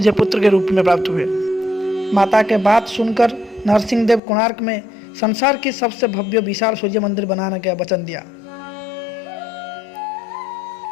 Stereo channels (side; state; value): right; drops out; at 4.2 s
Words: पुत्र के रूप में प्राप्त हुए। माता के बात सुनकर नरसिंह देव कोणार्क में संसार की सबसे भव्य विशाल सूर्य मंदिर बनाने का वचन दिया।